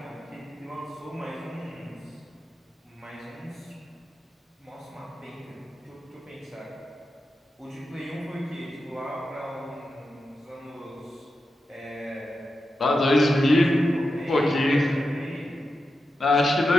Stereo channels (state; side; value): normal; both; correlation 0.89